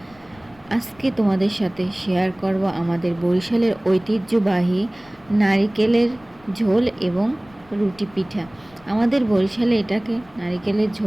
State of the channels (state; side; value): noise; left; rumble, 27 dB below the sound